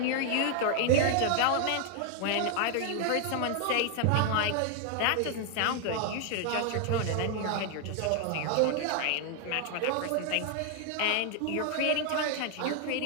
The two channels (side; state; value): both; different; correlation 0.00